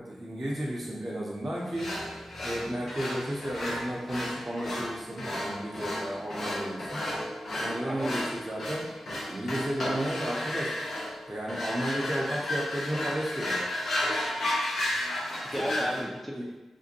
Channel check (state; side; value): normal; both; correlation 0.90